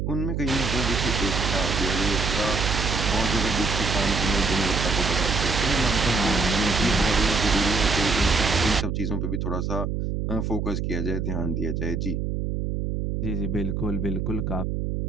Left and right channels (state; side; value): noise; right; hum, 1 dB below the sound